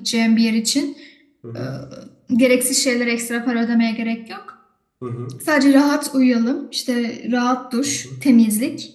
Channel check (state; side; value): identical; both; correlation 1.00